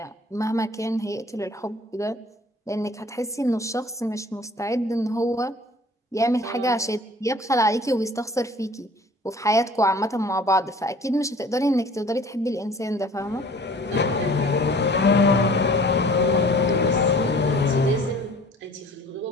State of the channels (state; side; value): normal; both; correlation 0.49